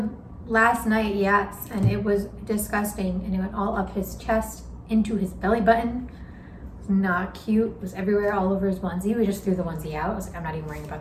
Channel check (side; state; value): both; identical; correlation 1.00